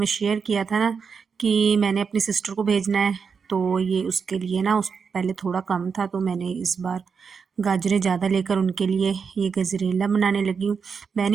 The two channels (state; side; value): quieter; left; 5.9 dB